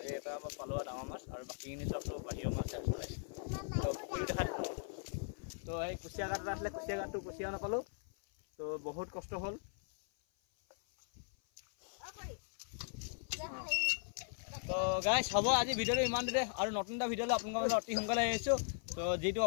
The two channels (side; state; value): right; silent; 52 dB below the other